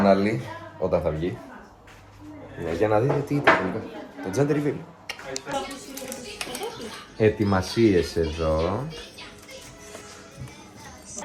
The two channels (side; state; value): both; identical; correlation 1.00